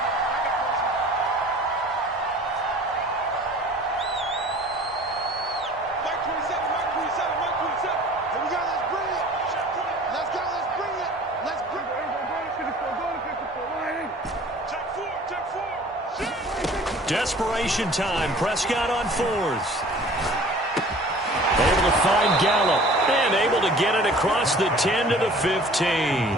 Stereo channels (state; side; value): normal; both; correlation 0.47